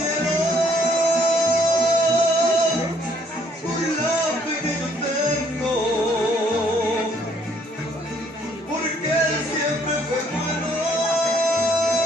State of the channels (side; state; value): both; normal; correlation 0.66